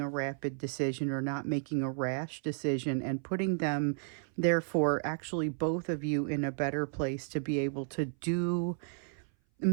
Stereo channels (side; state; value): left; silent; 56 dB below the other